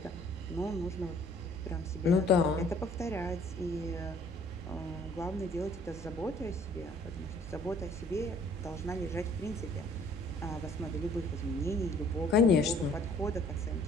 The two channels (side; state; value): both; normal; correlation 0.56